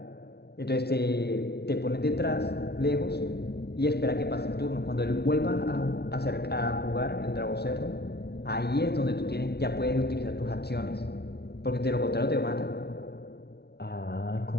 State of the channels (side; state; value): right; late; 0.48 ms